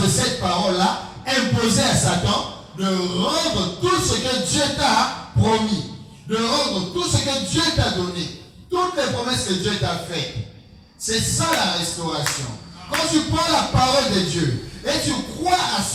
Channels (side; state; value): both; identical; correlation 1.00